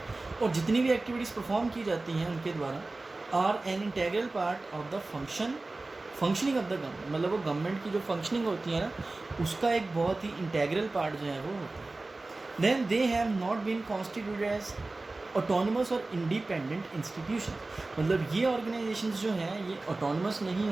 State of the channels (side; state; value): left; quieter; 3.2 dB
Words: और जितनी भी एक्टिविटीज़ परफॉर्म की जाती हैं उनके द्वारा are an integral part of the functioning of the government. मतलब वो गवर्नमेंट की जो फंक्शनिंग होती है ना उसका एक बहुत ही इंटेग्रल पार्ट जो है वो होता है। Then they have not been constituted as autonomous और इंडिपेंडेंट इंस्टीट्यूशन। मतलब ये ऑर्गेनाइजेशंस जो हैं ये ऑटोनमस नहीं